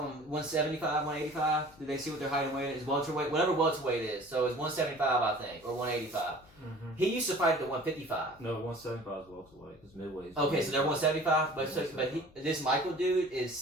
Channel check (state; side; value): noise; left; hum, 27 dB below the sound